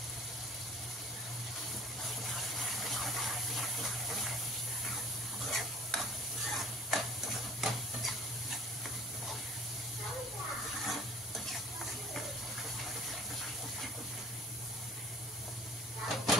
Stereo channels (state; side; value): normal; both; correlation 0.49